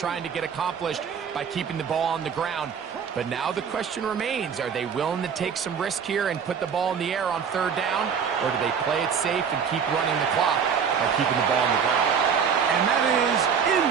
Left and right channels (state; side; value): quieter; left; 6.9 dB